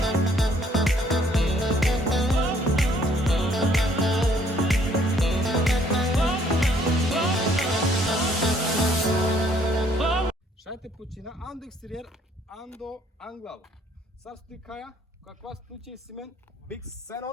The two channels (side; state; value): both; normal; correlation 0.63